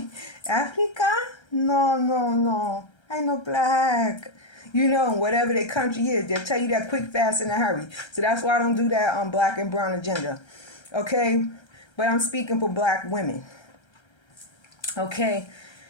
Africa? No. I know black. you know, whatever their country is. They'll tell you that quick, fast, in a hurry. So that's why I don't do that on black and brown agenda. Okay? But I'm speaking for black women. Okay?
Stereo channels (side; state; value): right; late; 1.3 ms